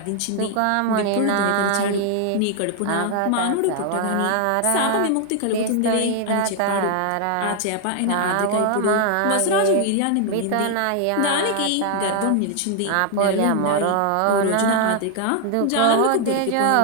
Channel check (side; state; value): both; different; correlation 0.00